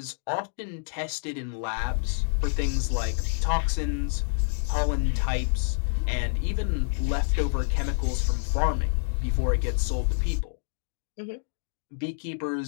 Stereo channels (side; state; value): right; silent; digital silence